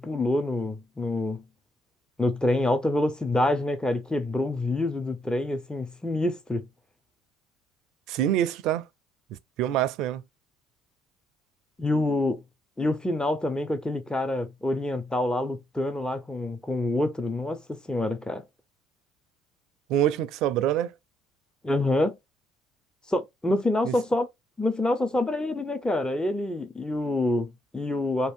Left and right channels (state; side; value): normal; both; correlation 0.74